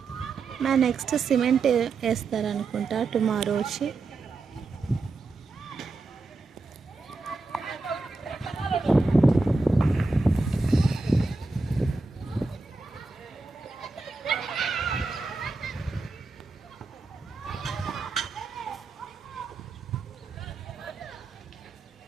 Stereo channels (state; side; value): quieter; left; 3.7 dB